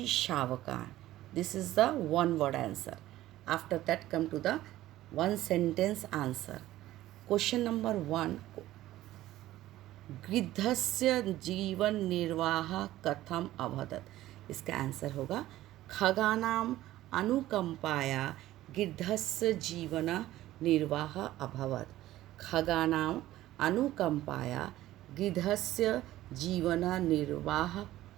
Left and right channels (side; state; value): left; quieter; 15.0 dB